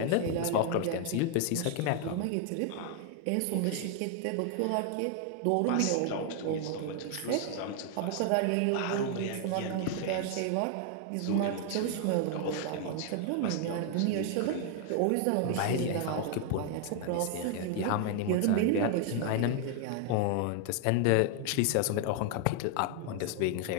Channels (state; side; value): different; both; correlation 0.00